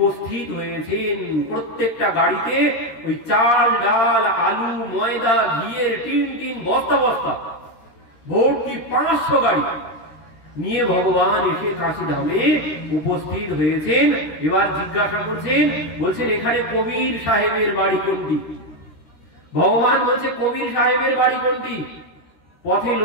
হয়েছেন। প্রত্যেকটা গাড়িতে ওই চাল ডাল আলু ময়দা ঘিয়ের টিন টিন বস্তা বস্তা ভর্তি 500 গাড়ি নিয়ে ভগবান এসে কাশী ধামে উপস্থিত হয়েছেন। এবার জিজ্ঞাসা করছেন, বলছেন এখানে কবির সাহেবের বাড়ি কোনটি? ভগবান বলছে কবির সাহেবের বাড়ি কোনটি? পথে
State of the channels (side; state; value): right; late; 13 ms